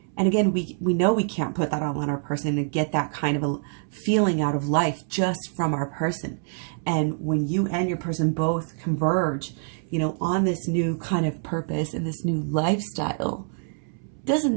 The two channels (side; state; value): left; silent; 61 dB below the other